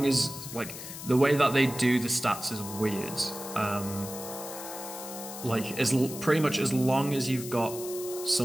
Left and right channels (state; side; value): noise; left; hiss, 10 dB below the sound